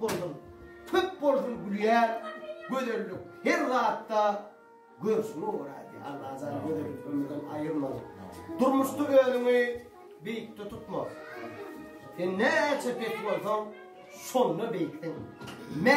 tüp bozdum gülüyen, göderlik her rahatta görsünü uğrar diye Allah azal göderlik ömrüden ayırmadı. Durmuştu ölümü büyükte tutmaz. Sen ne çepet olsan sonunu bektin.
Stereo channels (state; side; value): identical; both; correlation 1.00